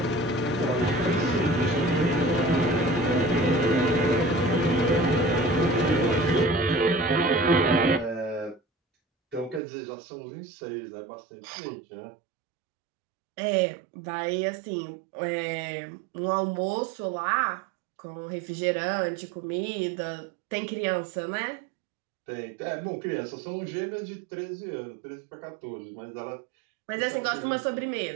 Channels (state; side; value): drops out; left; at 9.6 s